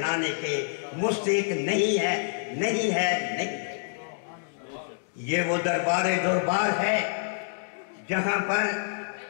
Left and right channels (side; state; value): right; silent; digital silence